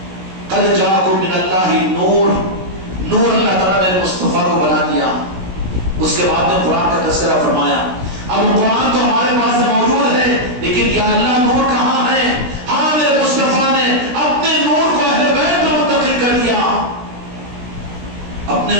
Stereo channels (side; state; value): left; late; 16 ms